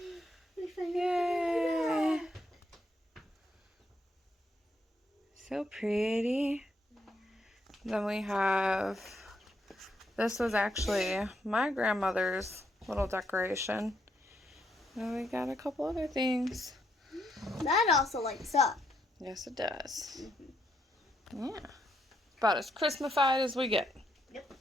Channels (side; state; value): both; normal; correlation 0.76